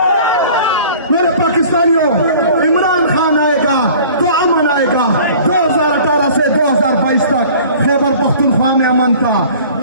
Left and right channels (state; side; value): inverted; both; correlation -0.47